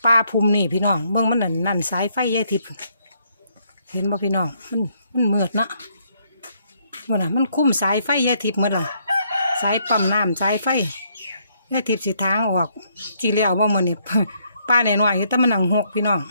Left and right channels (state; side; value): inverted; both; correlation -0.71